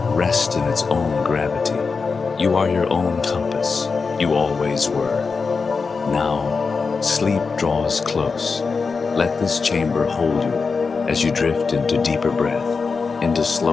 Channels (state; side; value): quieter; right; 4.8 dB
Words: rest in its own gravity. You are your own compass. You always were. Now, sleep draws close. Let this chamber hold you as you drift into deeper breath, into